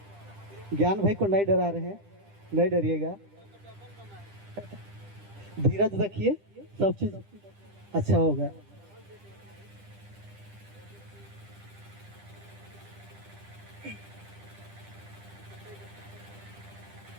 ज्ञान भाई को नहीं डरा रहे हैं, नहीं डरिएगा, धीरज रखिए, सब चीज अच्छा होगा।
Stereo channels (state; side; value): late; left; 10 ms